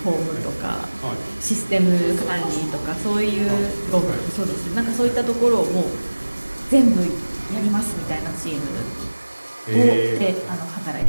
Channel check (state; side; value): inverted; both; correlation -1.00